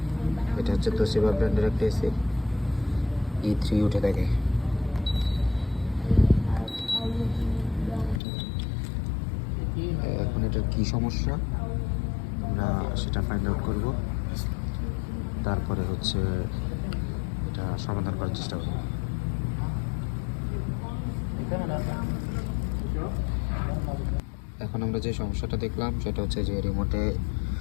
এটা হচ্ছে তোশিবা ব্র্যান্ডের একটা এসি, E3 উঠে থাকে। এখন এটার কী সমস্যা আমরা সেটা ফাইন্ড আউট করব, তারপরে হচ্ছে এটা সমাধান করার চেষ্টা করব। এখন আমরা যে সমস্যাটা দেখলাম সেটা হচ্ছে যে রিমোটে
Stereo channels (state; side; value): drops out; right; at 8.2 s